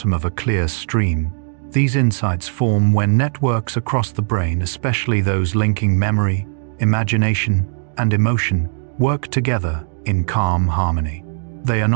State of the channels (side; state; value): left; silent; digital silence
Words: of a clear stream. These insights form when networks across the brain, especially those linking memory, imagination, and emotion, work together in calm harmony. They are